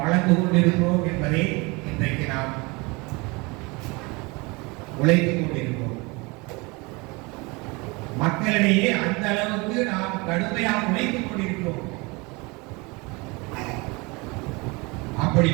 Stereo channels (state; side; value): quieter; left; 26.4 dB